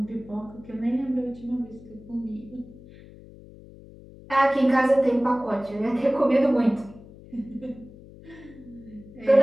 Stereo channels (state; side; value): noise; left; hum, 20 dB below the sound